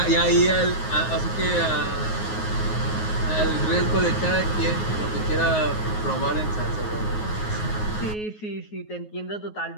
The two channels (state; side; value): late; right; 9.5 ms